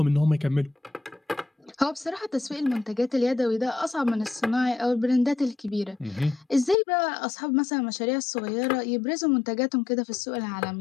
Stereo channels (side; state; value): right; drops out; at 6.8 s